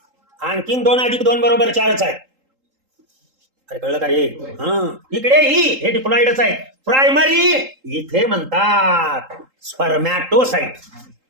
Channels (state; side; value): late; left; 3.8 ms